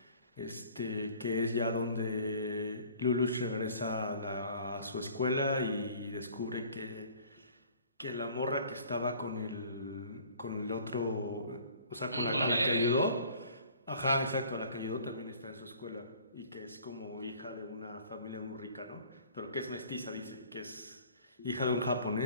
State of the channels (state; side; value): inverted; both; correlation -0.51